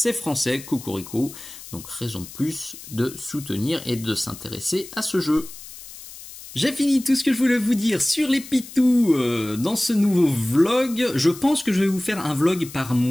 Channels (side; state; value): left; noise; hiss, 15 dB below the sound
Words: français, cocorico. Donc raison de plus de soutenir et de s'intéresser à ce jeu. J'ai fini tout ce que je voulais vous dire sur les pitous dans ce nouveau vlog. Je pense que je vais vous faire un vlog par